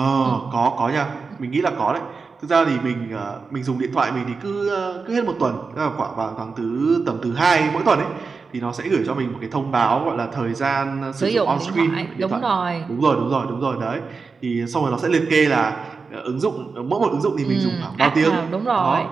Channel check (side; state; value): left; quieter; 4.7 dB